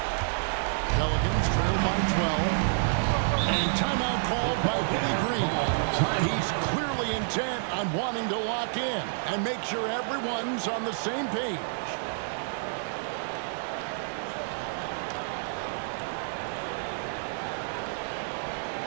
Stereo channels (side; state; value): left; silent; digital silence